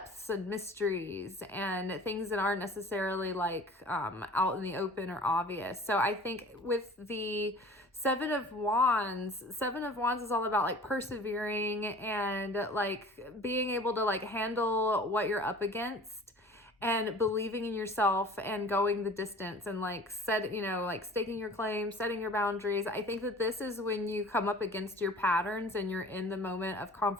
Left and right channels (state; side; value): normal; both; correlation 0.45